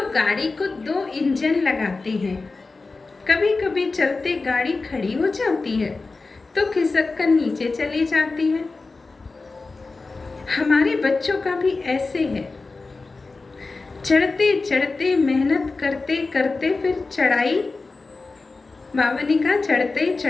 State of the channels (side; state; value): right; quieter; 3.8 dB